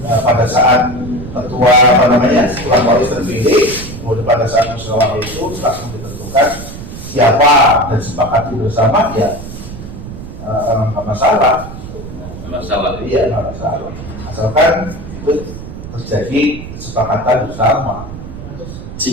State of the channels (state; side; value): noise; right; rumble, 11 dB below the sound